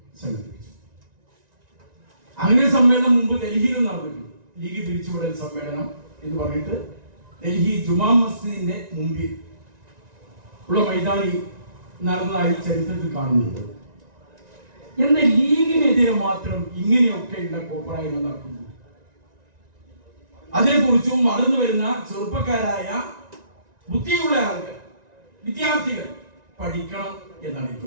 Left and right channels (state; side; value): late; left; 1.9 ms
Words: സംഘടിപ്പിച്ചു. അങ്ങനെ സമ്മേളനം മുമ്പ് ഡൽഹിയിലും നടന്നിട്ടുണ്ട്. ലീഗ് പിരിച്ചുവിടൽ സമ്മേളനം എന്ന് പറഞ്ഞിട്ട് ഡൽഹി ജുമാ മസ്ജിദിന്റെ മുമ്പിൽ ഉള്ള മൈതാനി നടന്നതായി ചരിത്രത്തിൽ കാണുന്നുണ്ട്. എന്നാൽ ലീഗിനെതിരെ മാത്രം ഇങ്ങനെയൊക്കെയുള്ള കോപ്രായ്മ നടക്കുന്നു. അതിനെക്കുറിച്ചും വളർന്നു വരുന്ന ചെറുപ്പക്കാരായ ബുദ്ധിയുള്ള ആളുകൾ, വിദ്യാർത്ഥികൾ പഠിക്കണം എന്നാണ്